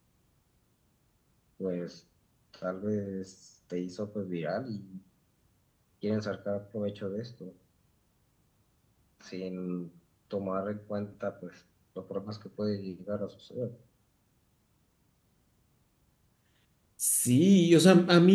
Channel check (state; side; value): identical; both; correlation 1.00